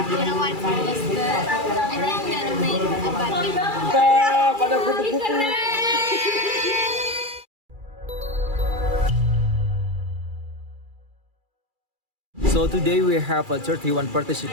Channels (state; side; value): late; left; 2.3 ms